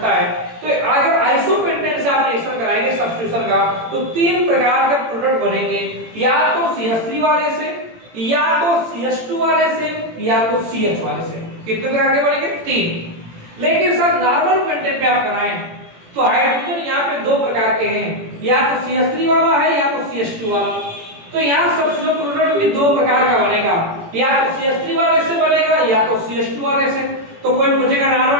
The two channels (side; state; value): left; late; 18 ms